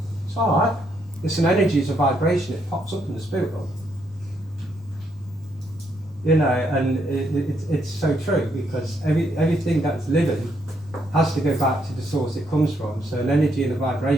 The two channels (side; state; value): both; normal; correlation 0.75